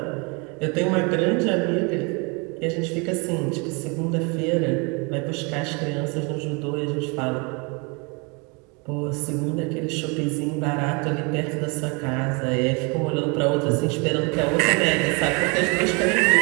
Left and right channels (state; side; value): quieter; left; 31.1 dB